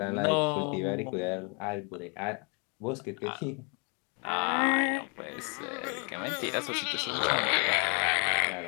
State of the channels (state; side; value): quieter; right; 35.6 dB